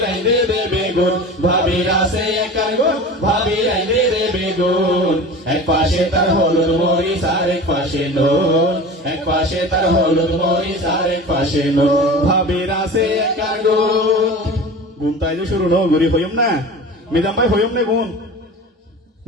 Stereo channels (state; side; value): normal; both; correlation 0.35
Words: আইনে দেবে গুণ ভাবির আছে একার গুণ ভাবির আইনে দেবে গুণ এক পাশে তার হলুদ মরিচ আর এক পাশে নুন এক পাশে তার হলুদ মরিচ আর এক পাশে নুন ভাবির আছে একার গুণ গুণ তাই যে শুরু ন গরি হইম না মিজাম ভাই হইম না গুণ